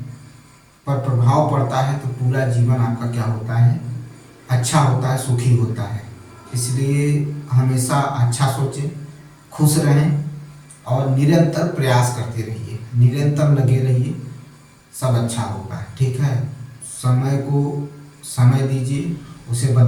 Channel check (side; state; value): both; identical; correlation 1.00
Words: पर प्रभाव पड़ता है तो पूरा जीवन आपका क्या होता है? अच्छा होता है, सुखी होता है। इसलिए हमेशा अच्छा सोचें, खुश रहें और निरंतर प्रयास करते रहिए, निरंतर लगे रहिए, सब अच्छा होगा। ठीक है, समय को समय दीजिए, उसे